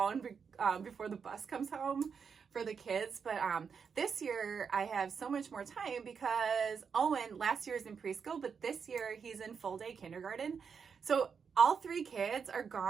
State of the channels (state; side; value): quieter; left; 6.3 dB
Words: before the bus comes home for the kids. But this year I have so much more time because Owen last year was in preschool, but this year he's in full day kindergarten. So all 3 kids are